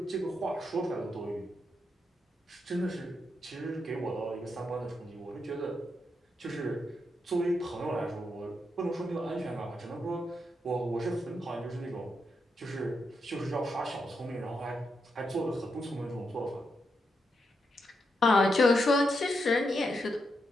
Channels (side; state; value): both; normal; correlation 0.83